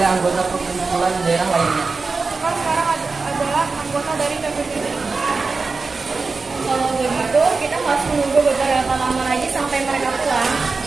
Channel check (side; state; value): left; quieter; 4.2 dB